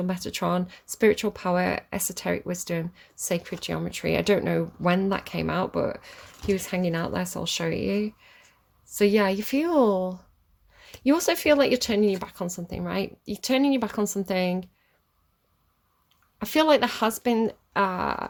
Metatron, spiritual power, esoteric wisdom, sacred geometry. I don't know when that came out, but he was hanging out there, so I'll show you. So yeah, you also feel like you're turning your back on something, right? You're turning your back on something. I feel like there has been,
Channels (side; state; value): both; identical; correlation 1.00